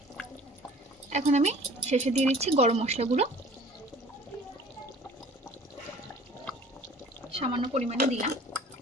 এখন আমি শেষে দিয়ে দিচ্ছি গরম মশলা গুঁড়ো, সামান্য পরিমাণে দিলাম।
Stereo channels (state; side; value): normal; both; correlation 0.49